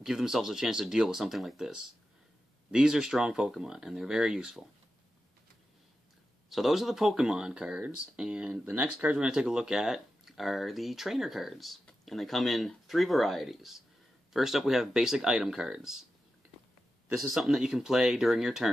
give themselves a chance to deal with something like this. These are strong Pokemon, and they're very useful. So those are the Pokemon cards, and the next cards we're going to take a look at are the trainer cards. And they come in 3 varieties. First up we have basic item cards. This is something that you can play during your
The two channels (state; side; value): normal; both; correlation 0.91